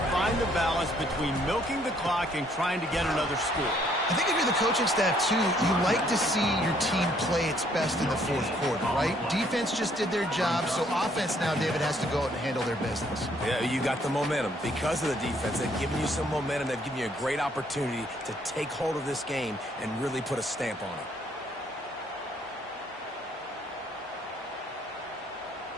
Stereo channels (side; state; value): both; normal; correlation 0.66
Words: find the balance between milking the clock and trying to get another score. I think if you're the coaching staff, too, you like to see your team play its best in the 4th quarter, right? Defense just did their job, so offense now, David, has to go out and handle their business. Yeah, you got the momentum. Because of the defense, they've given you some momentum. They've given you a great opportunity to take hold of this game and really put a stamp on it.